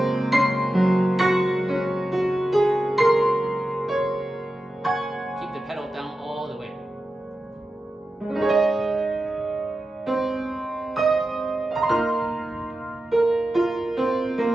The pedal down all the way.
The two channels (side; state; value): both; normal; correlation 0.92